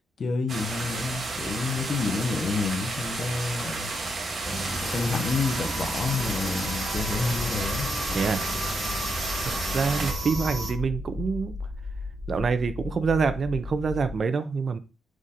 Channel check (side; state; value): both; normal; correlation 0.81